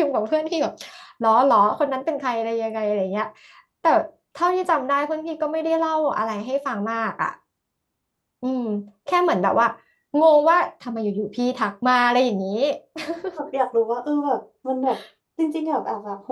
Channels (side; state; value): both; identical; correlation 1.00